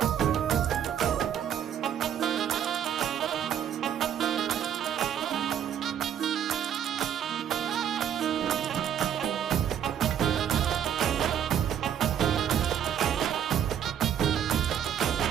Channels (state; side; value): quieter; left; 9.4 dB